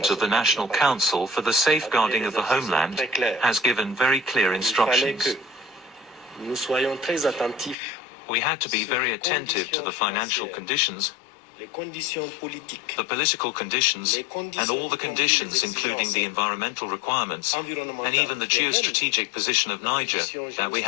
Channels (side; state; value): right; drops out; at 7.8 s